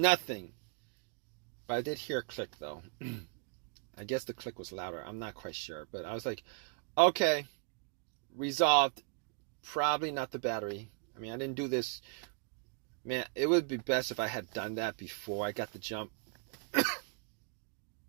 But I did hear a click though. I guess the click was louder. I'm not quite sure. But I was like, okay, resolved. Probably not the battery. I mean, I didn't do this. Man, it would be best if I had done that before I got the jump.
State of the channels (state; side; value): quieter; left; 38.3 dB